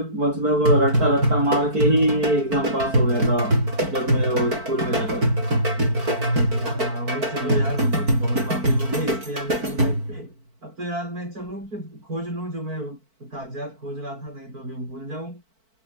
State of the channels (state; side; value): late; left; 4.5 ms